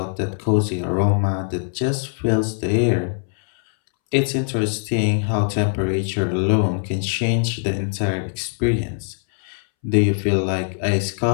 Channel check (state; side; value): silent; right; 65 dB below the other